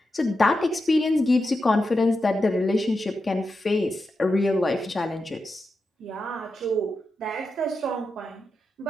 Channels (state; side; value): normal; both; correlation 0.89